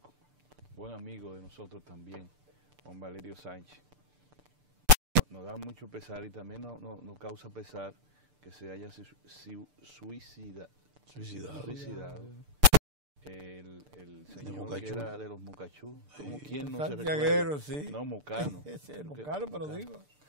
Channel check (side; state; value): left; late; 6.8 ms